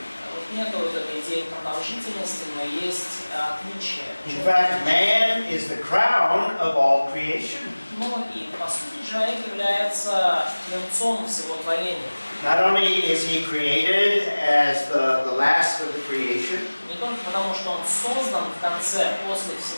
Вот нету вот этой идеи продолжительности, но есть отличие. In fact, man is the crown of all creation. Но и по сути человек является венцом всего творения. Not only is he created as the last of the creation, Не только потому, что он создан в конце, после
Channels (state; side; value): inverted; both; correlation -1.00